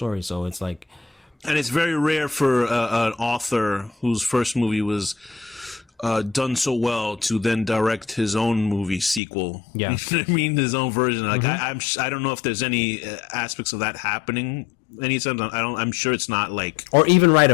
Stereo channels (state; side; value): drops out; right; at 9.2 s